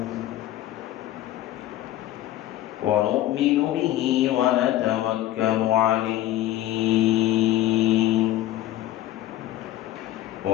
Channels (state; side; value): quieter; right; 14.0 dB